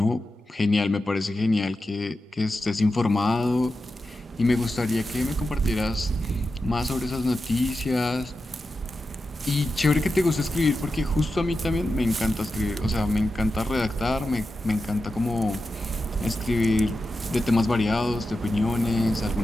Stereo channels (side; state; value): both; normal; correlation 0.91